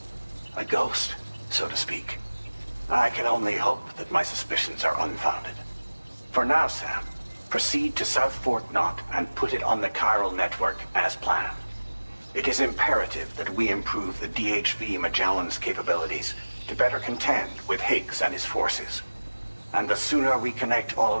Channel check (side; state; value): both; inverted; correlation -1.00